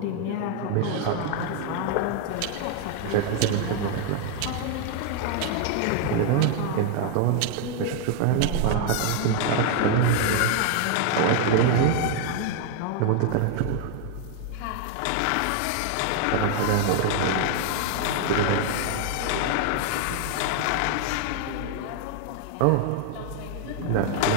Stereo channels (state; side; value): different; both; correlation 0.00